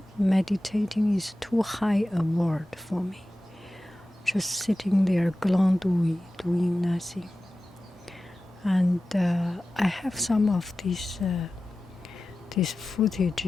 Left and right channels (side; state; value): both; normal; correlation 0.95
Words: Meditating is too high a word for me. Just sitting there, glandouille, doing nothing. And I have some of these